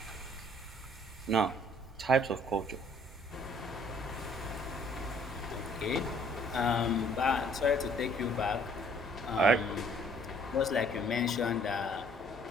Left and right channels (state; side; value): normal; both; correlation 0.60